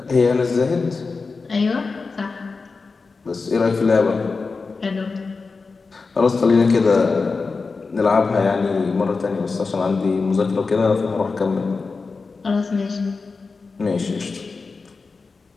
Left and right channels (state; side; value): quieter; right; 4.3 dB